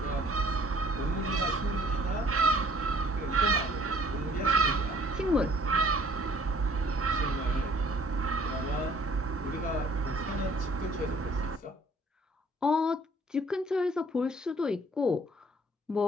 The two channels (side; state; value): both; normal; correlation 0.57